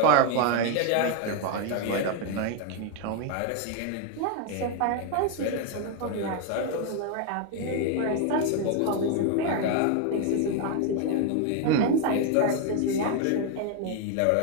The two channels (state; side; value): different; both; correlation 0.01